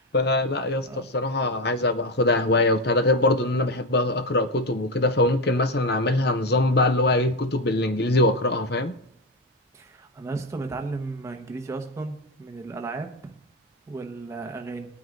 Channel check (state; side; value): normal; both; correlation 0.13